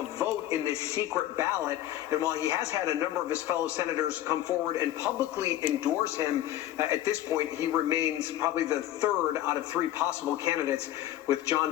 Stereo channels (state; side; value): quieter; right; 13.4 dB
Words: vote in this secret ballot. And while he has had a number of his fellow senators come forward and publicly endorse him, at this point, he remains probably the third out of three possible candidates, with